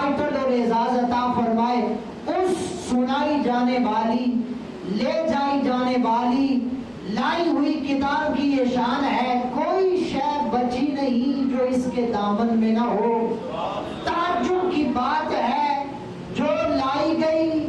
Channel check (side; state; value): both; identical; correlation 1.00